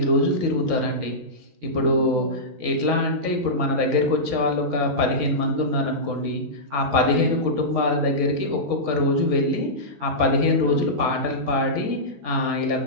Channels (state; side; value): late; left; 15 ms